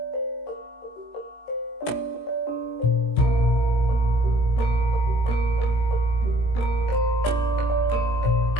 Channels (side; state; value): right; late; 19 ms